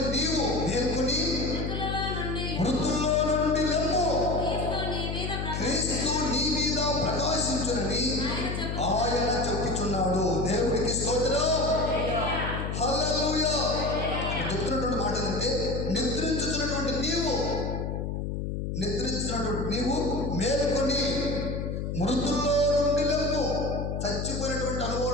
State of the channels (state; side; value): noise; left; hum, 3 dB below the sound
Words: నీవు మేల్కొని మృతుల్లో నుండి లెమ్ము, క్రీస్తు నీ మీద ప్రకాశించునని ఆయన చెప్పుచున్నాడు. దేవుడికి స్తోత్రం. హల్లెలూయా. చెప్తున్నటువంటి మాట ఏంటంటే నిద్రించుచున్నటువంటి నీవు మేల్కొని మృతుల్లో నుండి లెమ్ము. చచ్చిపోయినటువంటి